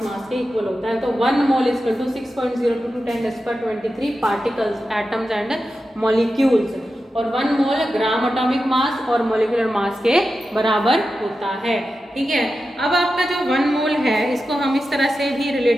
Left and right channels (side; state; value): both; normal; correlation 0.91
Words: मास के इक्वल होता है। तो 1 mole is equal to 6.022 10⁻23 particles, atoms and molecules, और 1 मोल ग्राम एटॉमिक मास और मॉलिक्यूलर मास के बराबर होता है। ठीक है, अब आपका जो 1 मोल है इसको हम इस तरह से भी